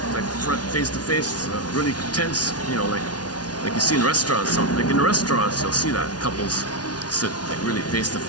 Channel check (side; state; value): right; late; 0.69 ms